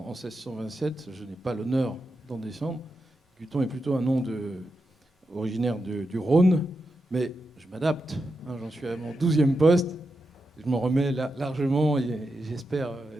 1627. Je n'ai pas l'honneur d'en descendre. Guiton est plutôt un nom originaire du Rhône, mais je m'adapte. J'en suis à mon 12e poste. Je m'en remets largement et j'espère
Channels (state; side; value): normal; both; correlation 0.87